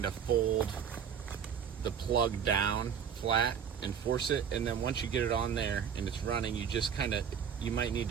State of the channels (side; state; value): left; quieter; 7.6 dB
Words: of fold the plug down flat and force it, and then once you get it on there and it's running, you just you might need